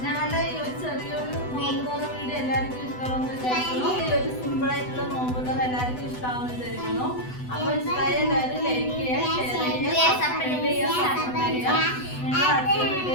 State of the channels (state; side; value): late; right; 8.0 ms